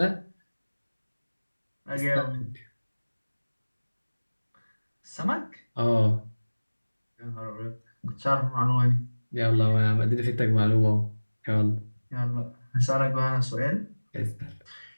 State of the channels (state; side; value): inverted; both; correlation -1.00